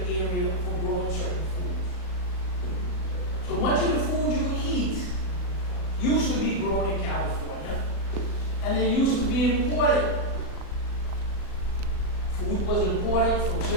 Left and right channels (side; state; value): right; late; 38 ms